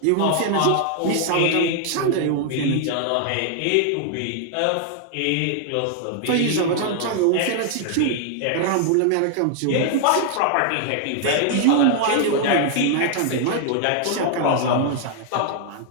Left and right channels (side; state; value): both; different; correlation 0.00